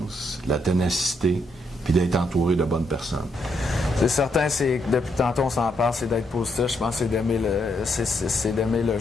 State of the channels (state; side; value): normal; both; correlation 0.77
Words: la ténacité, puis d'être entouré de bonnes personnes. C'est certain, depuis tantôt on s'en parle, c'est d'être positif. Je pense que c'est d'aimer le